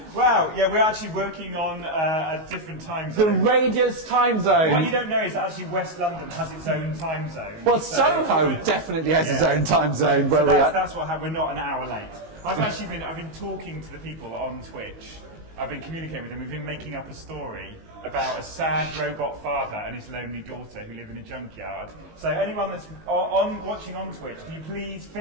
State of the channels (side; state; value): left; late; 19 ms